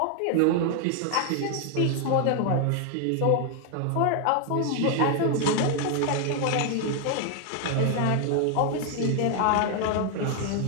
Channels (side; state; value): both; different; correlation 0.00